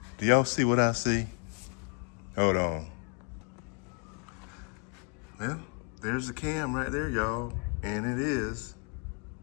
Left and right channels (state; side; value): quieter; right; 37.4 dB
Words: do y'all see what I see? Hold on. Well, there's the cam right there, y'all. And it is,